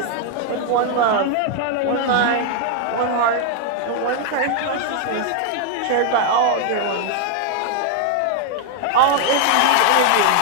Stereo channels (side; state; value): both; different; correlation 0.00